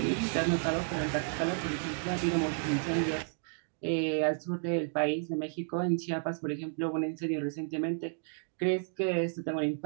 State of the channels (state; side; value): silent; left; 56 dB below the other